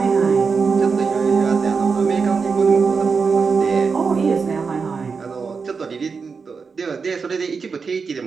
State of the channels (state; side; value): quieter; left; 5.2 dB